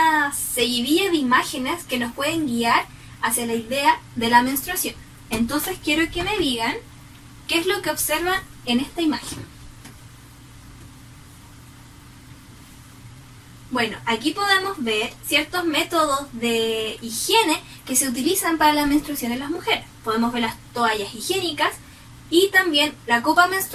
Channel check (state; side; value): identical; both; correlation 1.00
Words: seguidilla de imágenes que nos pueden guiar hacia la idea de la menstruación. Entonces quiero que me digan qué es lo que observan en esta imagen. Bueno, aquí podemos ver ciertos métodos de higiene que se utilizan para la menstruación en las mujeres. Podemos ver las toallas higiénicas y también la copa